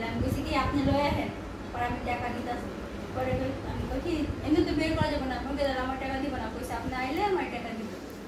আমি কইছি কি আপনি লয়ে আহেন পরে আমি টাকা দিতাছি পরে আমি কই কি এমনি তো বের করা যাবে না বলতে আমার টাকা দিব না কইছে আপনি আইলে আমার টাকা দিব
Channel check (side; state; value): both; identical; correlation 1.00